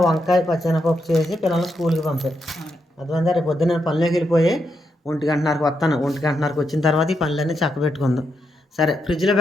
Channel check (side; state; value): both; normal; correlation 0.82